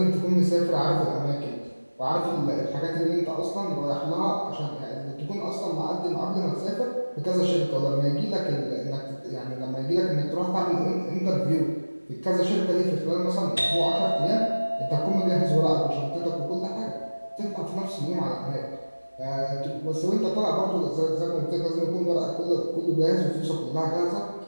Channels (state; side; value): inverted; both; correlation -1.00